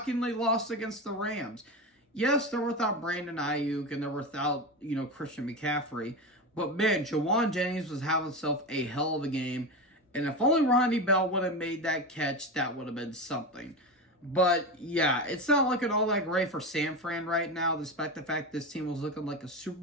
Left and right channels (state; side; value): normal; both; correlation 0.20